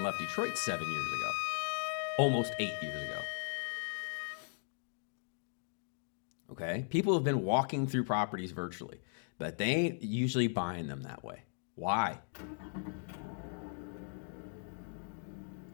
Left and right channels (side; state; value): right; silent; 53 dB below the other